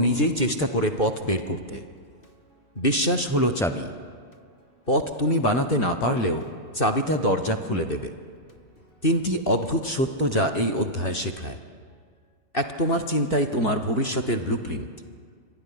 নিজেই চেষ্টা করে পথ বের করতে। বিশ্বাস হলো চাবি। পথ তুমি বানাতে না পারলেও চাবিটা দরজা খুলে দেবে। 3টি অদ্ভুত সত্য যা এই অধ্যায় শেখায়। 1, তোমার চিন্তাই তোমার ভবিষ্যতের ব্লুপ্রিন্ট।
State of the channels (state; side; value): late; right; 2.6 ms